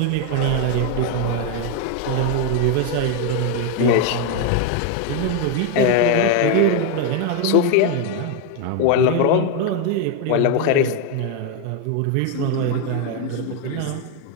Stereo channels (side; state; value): both; different; correlation 0.01